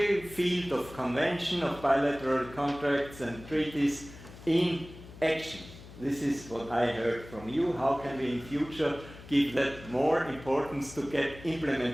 field of convention, of bilateral contracts and treaties in action. This is what I heard from you. How can we in future give that more importance to get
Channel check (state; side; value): noise; left; hum, 17 dB below the sound